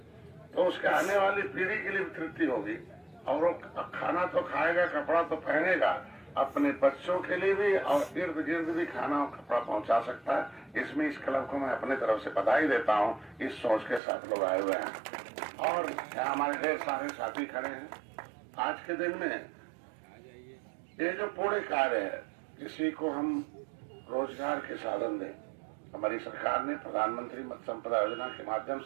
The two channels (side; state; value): left; drops out; at 14.0 s